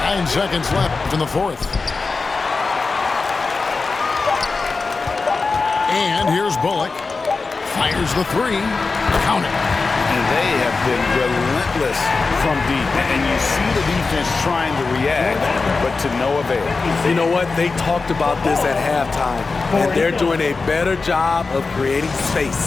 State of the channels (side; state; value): right; quieter; 4.1 dB